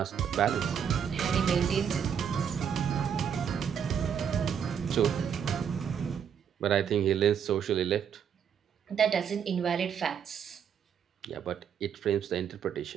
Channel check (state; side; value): quieter; left; 7.9 dB